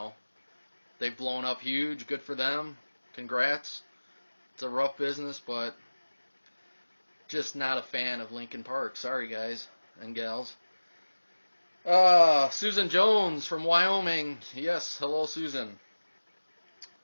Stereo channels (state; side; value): inverted; both; correlation -1.00